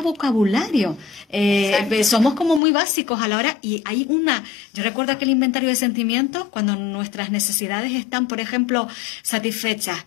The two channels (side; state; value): right; drops out; at 2.6 s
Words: vocabulario, somos como muy básicos a la hora, y hay yo recuerdo aquel inventario de sentimientos cuando nuestras necesidades están, por ejemplo, satisfechas,